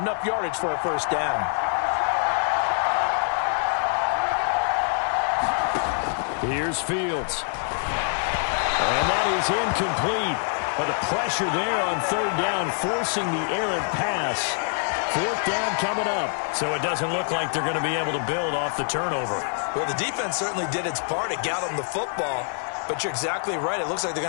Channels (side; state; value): right; silent; 62 dB below the other